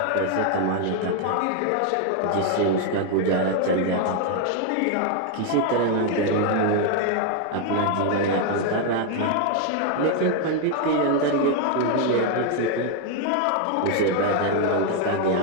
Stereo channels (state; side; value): different; both; correlation 0.01